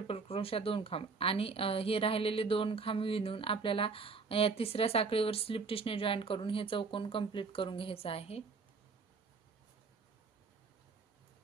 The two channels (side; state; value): left; quieter; 4.7 dB